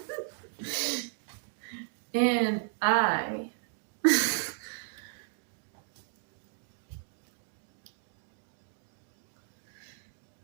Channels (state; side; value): silent; left; digital silence